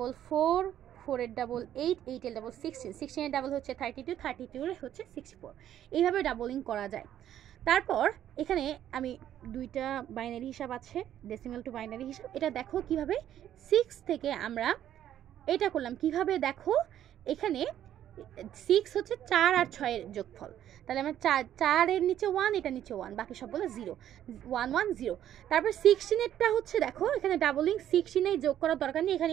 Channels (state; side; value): quieter; left; 11.2 dB